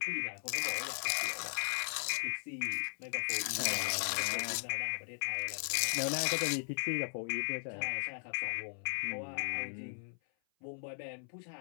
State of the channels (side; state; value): right; silent; 53 dB below the other